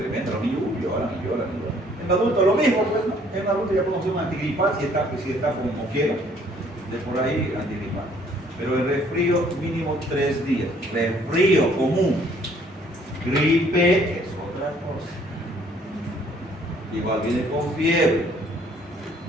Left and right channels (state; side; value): normal; both; correlation 0.61